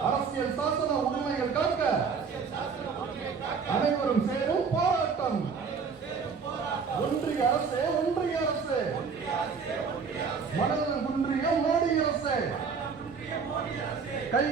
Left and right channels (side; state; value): left; quieter; 5.6 dB